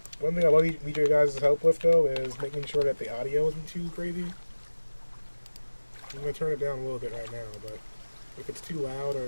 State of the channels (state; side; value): inverted; both; correlation -1.00